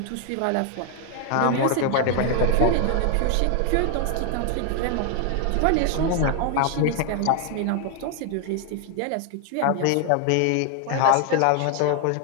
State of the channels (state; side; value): different; both; correlation 0.00